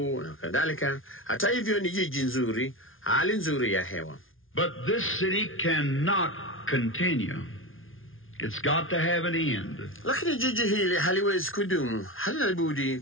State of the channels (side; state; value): right; late; 0.59 ms